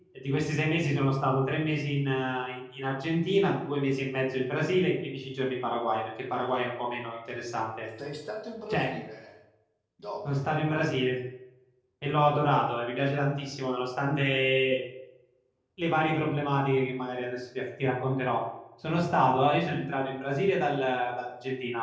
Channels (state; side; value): identical; both; correlation 1.00